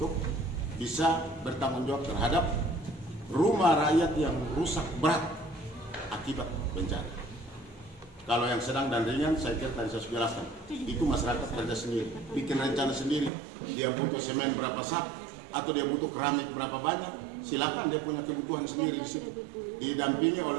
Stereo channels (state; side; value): drops out; left; at 13.3 s